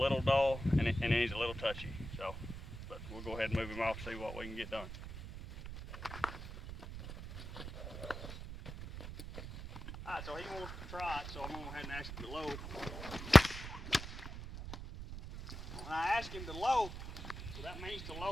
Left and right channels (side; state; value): right; noise; rumble, 9 dB below the sound